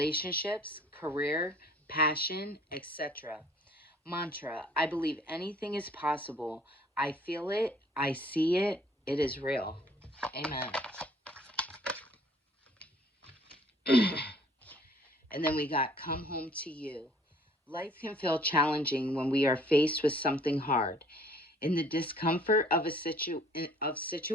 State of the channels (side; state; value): both; normal; correlation 0.56